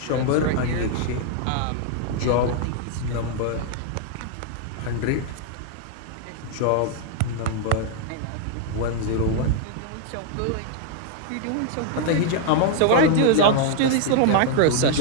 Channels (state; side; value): different; both; correlation 0.00